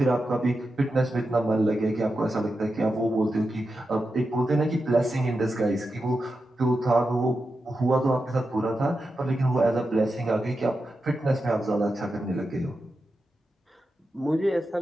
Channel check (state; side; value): normal; both; correlation 0.89